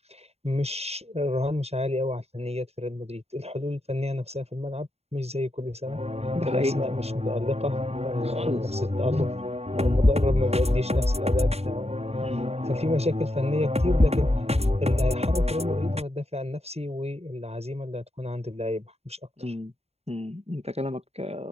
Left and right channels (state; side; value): late; left; 0.30 ms